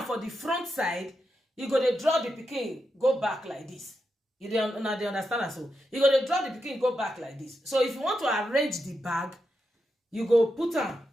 for the front side, you go dey draw the pikin go back like this. You dey understand am? So you go dey draw the pikin go back like this. So if you want to arrange the bag, you go put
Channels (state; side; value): normal; both; correlation 0.86